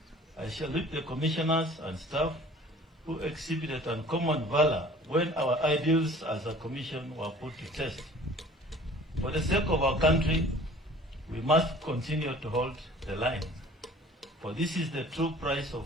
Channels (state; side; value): normal; both; correlation 0.48